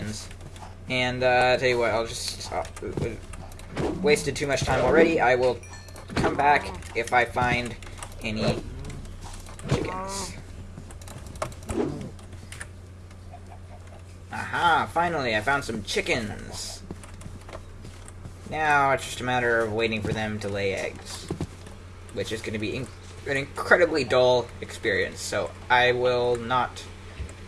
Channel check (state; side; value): identical; both; correlation 1.00